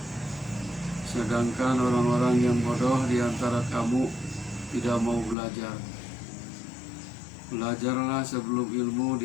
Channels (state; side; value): drops out; right; at 5.4 s